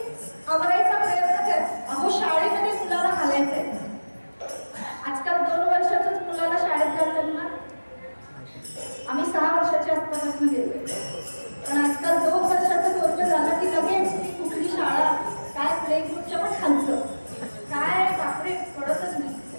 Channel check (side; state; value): both; inverted; correlation -1.00